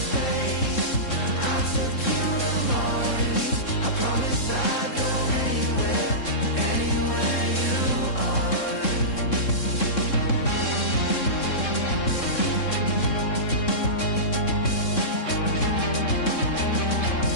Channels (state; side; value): late; right; 3.7 ms